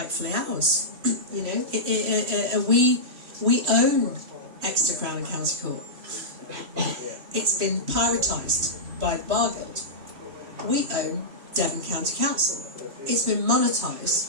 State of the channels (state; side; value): late; left; 2.9 ms